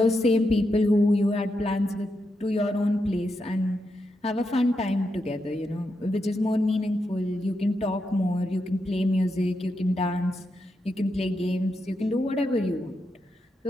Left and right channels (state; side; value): normal; both; correlation 0.85